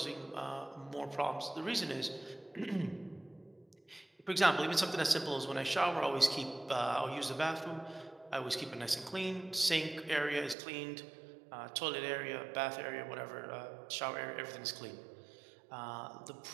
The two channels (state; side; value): drops out; left; at 10.6 s